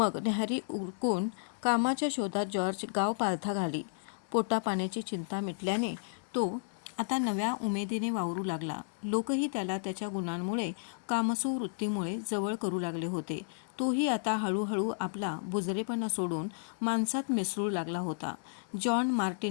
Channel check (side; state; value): right; silent; digital silence